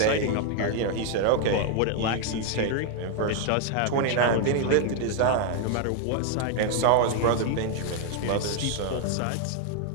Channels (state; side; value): different; both; correlation 0.00